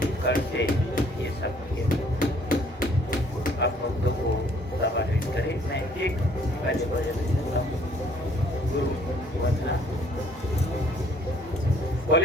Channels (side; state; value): both; normal; correlation 0.60